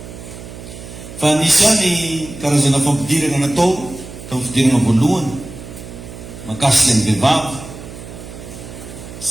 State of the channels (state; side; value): noise; right; hum, 14 dB below the sound